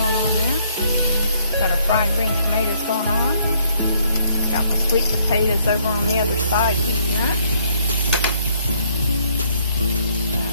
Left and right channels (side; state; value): both; inverted; correlation -0.66